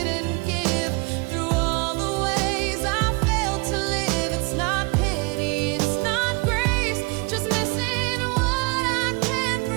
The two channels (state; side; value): quieter; left; 28.9 dB